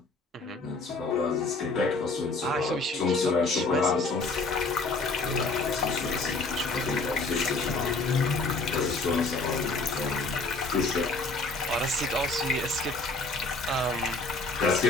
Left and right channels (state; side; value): quieter; right; 3.4 dB